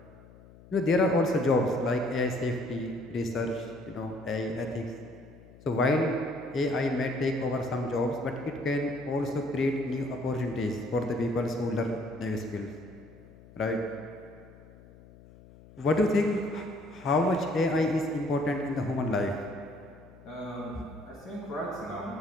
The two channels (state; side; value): noise; left; hum, 22 dB below the sound